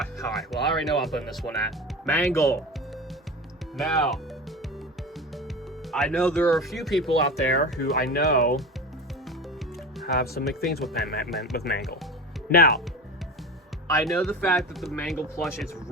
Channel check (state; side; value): normal; both; correlation 0.30